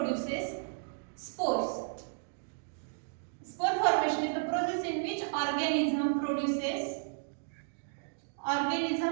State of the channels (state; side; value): silent; left; digital silence